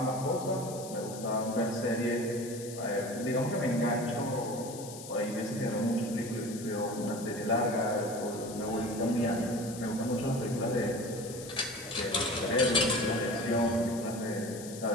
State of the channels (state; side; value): noise; left; hiss, 13 dB below the sound